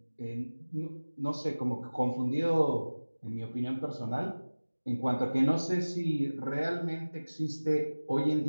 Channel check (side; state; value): both; inverted; correlation -1.00